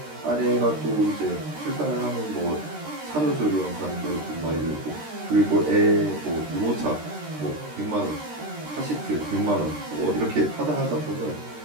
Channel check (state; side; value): late; left; 13 ms